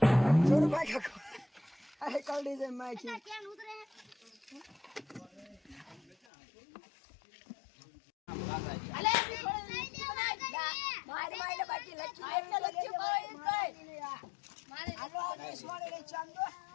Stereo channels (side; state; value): right; drops out; at 6.2 s